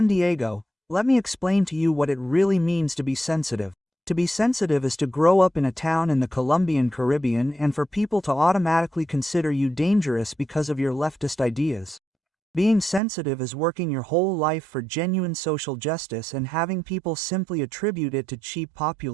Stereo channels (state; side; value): drops out; left; at 13.0 s